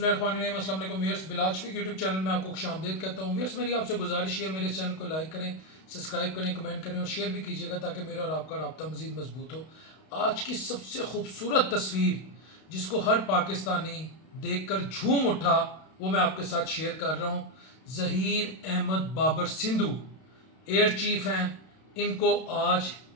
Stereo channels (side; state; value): right; late; 32 ms